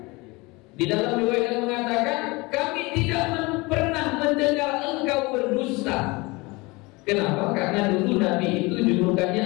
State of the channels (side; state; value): right; quieter; 24.5 dB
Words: Di dalam riwayat yang mengatakan, kami tidak pernah mendengar engkau berdusta. Kenapa? Karena dulu Nabi itu